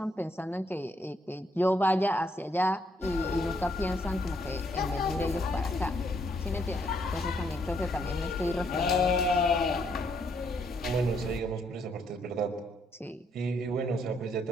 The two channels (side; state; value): both; normal; correlation 0.72